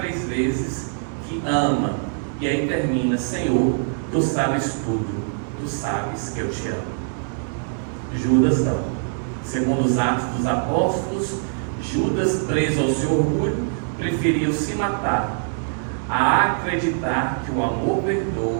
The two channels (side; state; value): left; silent; digital silence